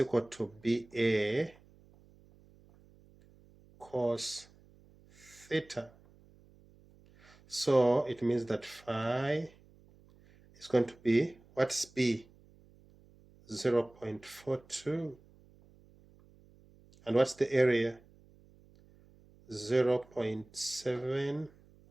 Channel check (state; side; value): noise; right; hum, 27 dB below the sound